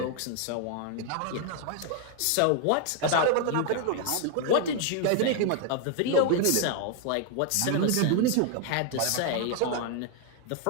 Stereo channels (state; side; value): different; both; correlation 0.00